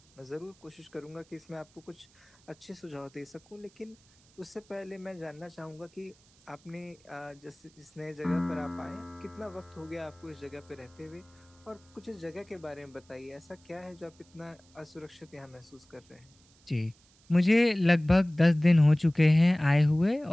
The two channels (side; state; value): right; noise; hiss, 30 dB below the sound